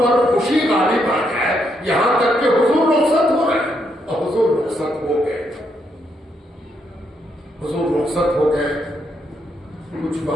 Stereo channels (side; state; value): both; normal; correlation 0.77